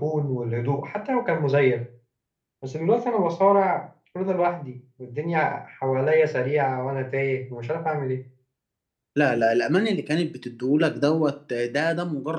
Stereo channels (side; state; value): both; identical; correlation 1.00